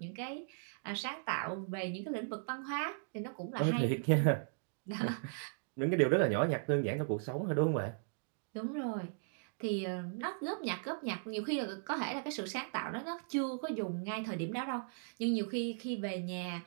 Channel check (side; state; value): left; silent; digital silence